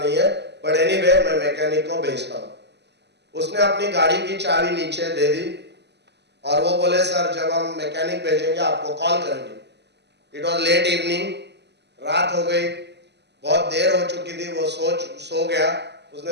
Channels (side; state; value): left; late; 0.50 ms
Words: है, बट एनीवे मैं मैकेनिक को भेजता हूँ. उसने अपनी गाड़ी की चाबी नीचे दे दी और वो बोले सर जब हम मैकेनिक भेजेंगे आपको कॉल करेंगे. इट वॉज लेट इवनिंग, रात हो गई, बहुत देर हो चुकी थी. वो सो गया.